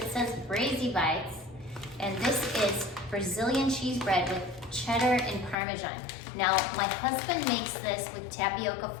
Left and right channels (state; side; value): drops out; right; at 5.6 s